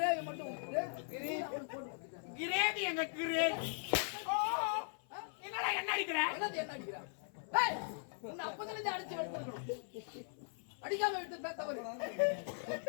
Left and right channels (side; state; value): right; silent; 51 dB below the other